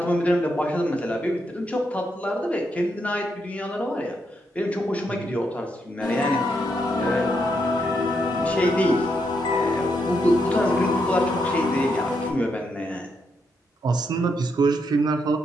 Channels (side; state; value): both; normal; correlation 0.79